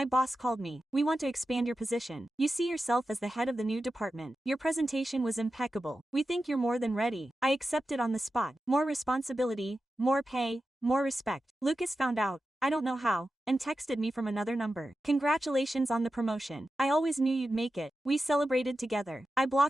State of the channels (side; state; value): both; normal; correlation 0.92